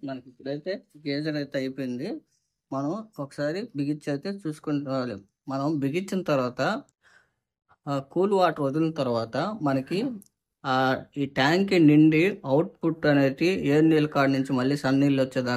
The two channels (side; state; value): both; identical; correlation 1.00